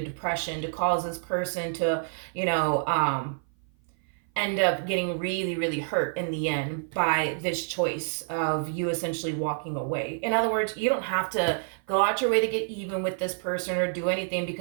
depression, to cause this person to, end up getting really, really hurt in the end by this choice of you essentially walking away. In other words, you don't have to go out your way to get even with this person or do anything,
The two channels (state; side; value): silent; left; 56 dB below the other